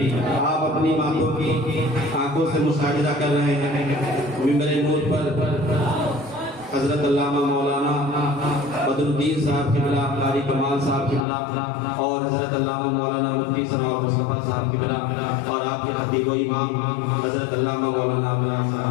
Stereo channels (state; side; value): drops out; right; at 11.2 s